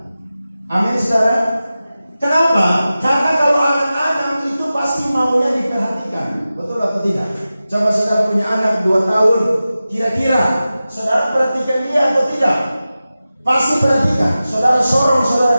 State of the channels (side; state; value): both; inverted; correlation -0.94